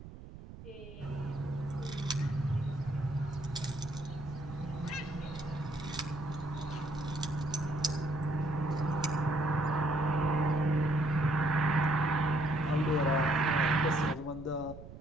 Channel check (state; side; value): noise; right; rumble, 14 dB below the sound